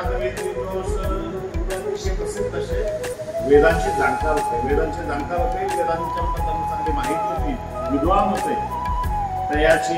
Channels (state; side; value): identical; both; correlation 1.00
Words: प्रसिद्ध असे वेदांचे जाणकार होते. वेदांच्या चांगली माहिती होती, विद्वान होते.